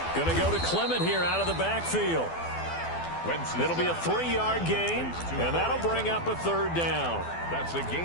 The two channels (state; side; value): late; right; 12 ms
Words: Going to go to Clement here out of the backfield. It'll be a 3-yard gain, and that'll bring up a 3rd down. That's a